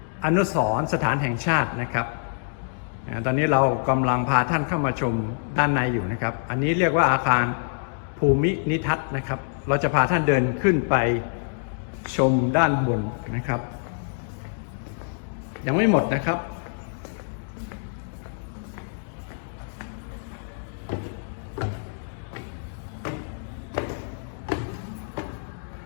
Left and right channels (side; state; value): right; silent; digital silence